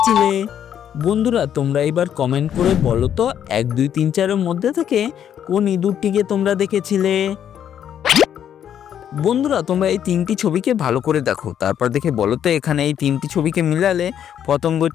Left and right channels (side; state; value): right; quieter; 9.5 dB